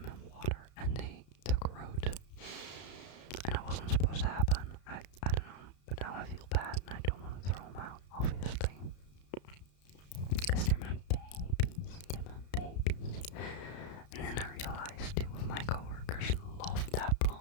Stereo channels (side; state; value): right; late; 33 ms